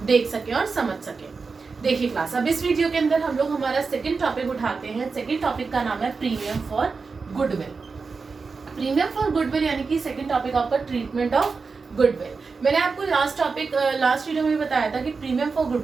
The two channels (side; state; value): left; quieter; 4.7 dB